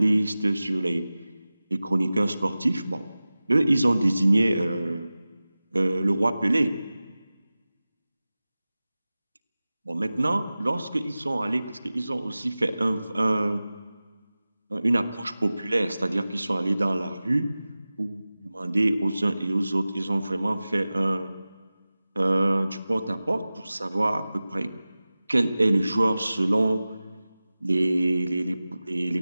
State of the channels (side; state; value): both; inverted; correlation -0.97